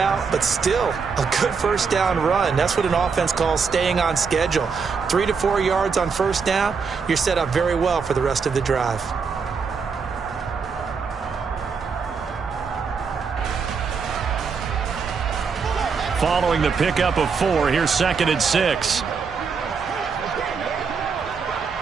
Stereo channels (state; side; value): quieter; left; 5.5 dB